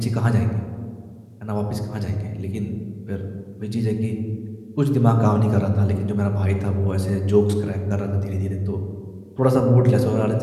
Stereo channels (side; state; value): both; identical; correlation 1.00